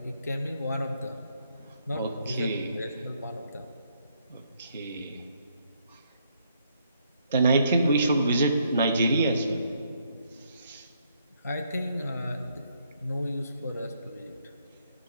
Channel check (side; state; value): both; inverted; correlation -0.72